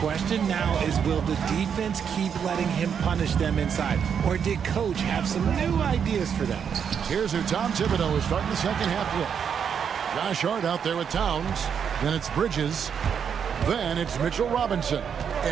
now is, will the defense keep letting him punish them inside? Or did Coach have some new ideas for them? Here's who Tom Thibodeau is starting the second half with. Josh Hart out there with Towns. Then it's Bridges. Then it's Mitchell Robinson.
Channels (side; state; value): left; quieter; 7.4 dB